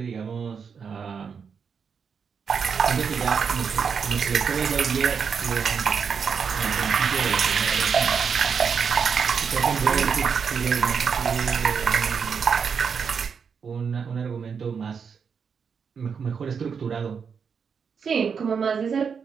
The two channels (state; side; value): quieter; left; 6.3 dB